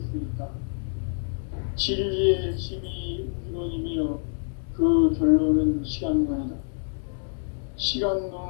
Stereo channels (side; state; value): right; silent; digital silence